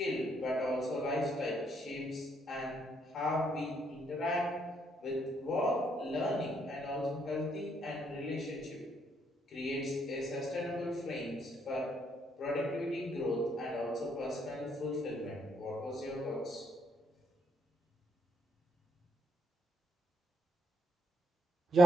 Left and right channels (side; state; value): both; normal; correlation 0.72